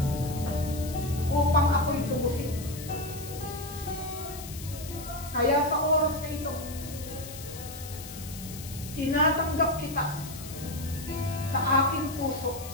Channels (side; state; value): left; noise; hiss, 13 dB below the sound